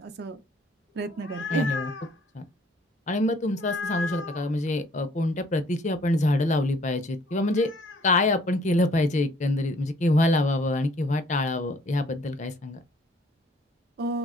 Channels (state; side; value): normal; both; correlation 0.60